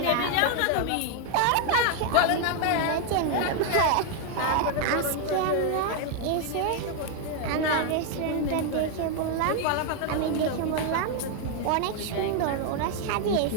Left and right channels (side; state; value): both; different; correlation 0.00